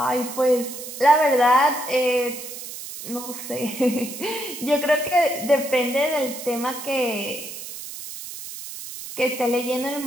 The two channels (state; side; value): noise; right; hiss, 10 dB below the sound